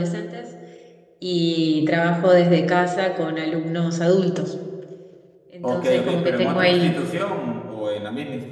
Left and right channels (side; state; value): both; identical; correlation 1.00